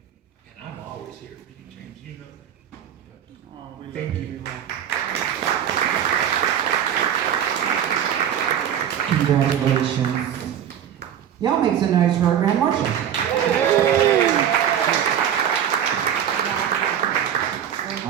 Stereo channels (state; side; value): quieter; left; 9.5 dB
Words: And I'm always here for you, James. You know that. Thank you. Congratulations. Y'all make some noise for our Grand Marshal. All